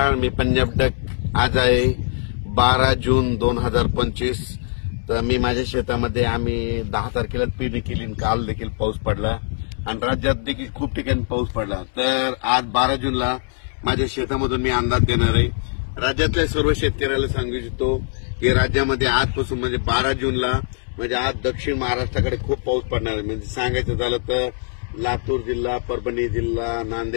मी पंजाब डक. आज आहे 12 जून 2025. तर मी माझ्या शेतामध्ये आम्ही 10 तारखेला पेरणी केली. काल देखील पाऊस पडला आणि राज्यात देखील खूप ठिकाणी पाऊस पडला. तर आज 12 जूनला माझ्या शेतामधून मी अंदाज देणार आहे. राज्यातल्या सर्व शेतकऱ्याला सांगू इच्छितो की राज्यामध्ये आजपासून म्हणजे 12 जूनला म्हणजे आज दक्षिण महाराष्ट्राकडे खूप पाऊस पडणार आहे. म्हणजे सांगायचं झालं तर लातूर जिल्हा, परभणी जिल्हा,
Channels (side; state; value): right; silent; 64 dB below the other